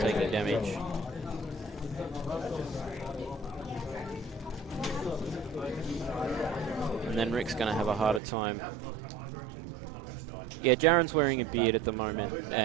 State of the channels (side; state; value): left; drops out; at 8.2 s